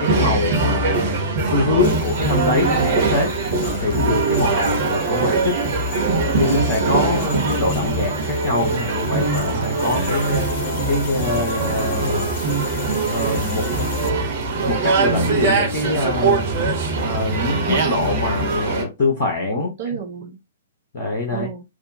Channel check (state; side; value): inverted; both; correlation -0.33